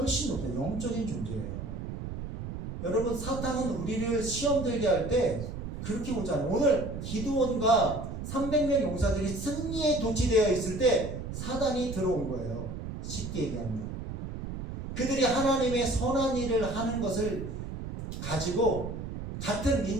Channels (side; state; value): right; noise; rumble, 7 dB below the sound